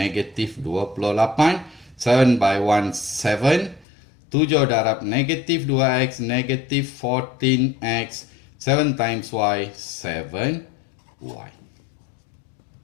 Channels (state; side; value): drops out; right; at 3.9 s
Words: 28. 7 by 1 7. 7 darab negatif 2x negatif 14x. 7 times y 7y.